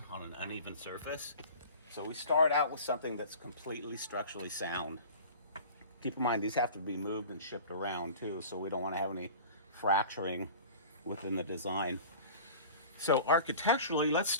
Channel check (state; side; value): inverted; both; correlation -0.40